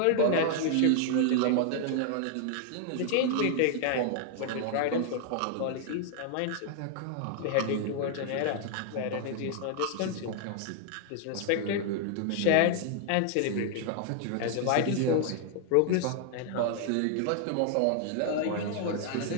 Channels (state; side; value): different; both; correlation 0.00